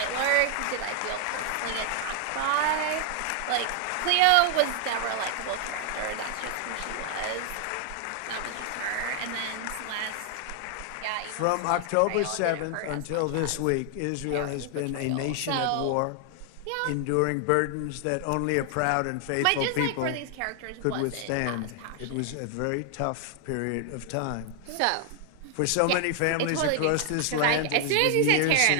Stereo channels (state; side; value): different; both; correlation 0.00